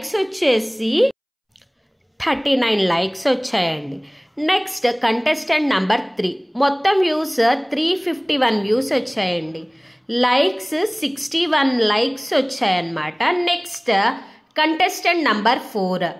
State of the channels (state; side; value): identical; both; correlation 1.00